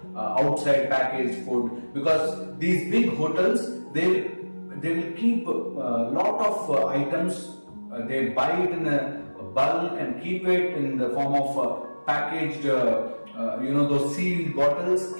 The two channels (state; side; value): inverted; both; correlation -1.00